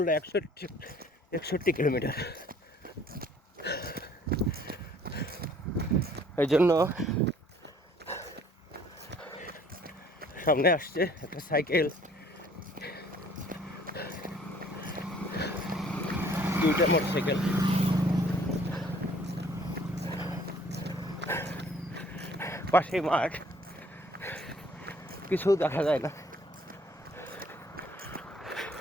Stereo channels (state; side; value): normal; both; correlation 0.57